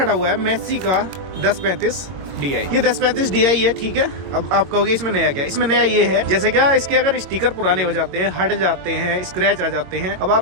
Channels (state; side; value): late; left; 22 ms